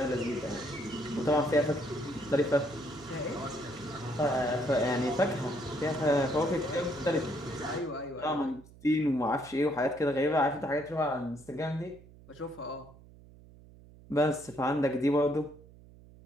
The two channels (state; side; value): noise; right; hum, 22 dB below the sound